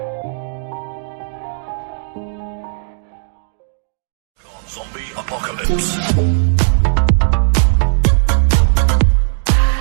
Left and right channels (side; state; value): left; silent; digital silence